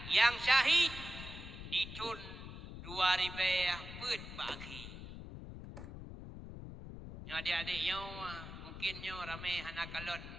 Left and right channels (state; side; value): noise; left; rumble, 11 dB below the sound